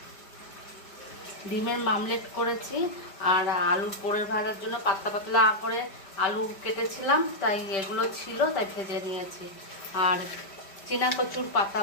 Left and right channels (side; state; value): right; late; 5.1 ms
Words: ডিমের মামলেট করেছি, আর আলুর পোড়ের ভাজার জন্য পাতলা পাতলা করে আলু কেটেছিলাম, তাই এগুলো ছিল, তাই ভেজে নিয়েছি। আর চীনা কচুর পাতা